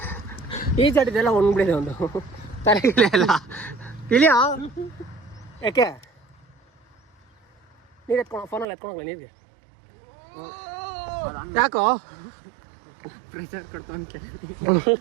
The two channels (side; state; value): left; drops out; at 8.7 s